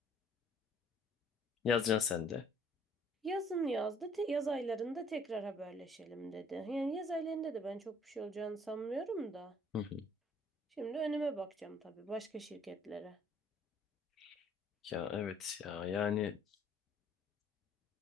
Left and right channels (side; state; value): both; normal; correlation 0.60